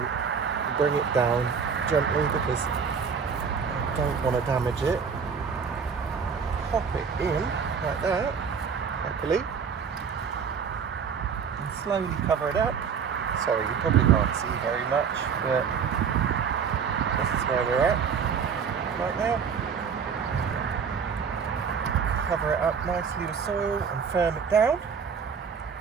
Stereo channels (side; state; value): left; quieter; 6.4 dB